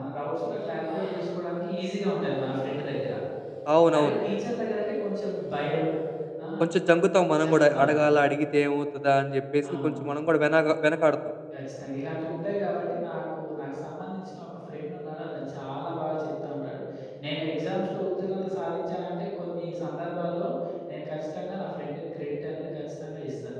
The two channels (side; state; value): both; identical; correlation 1.00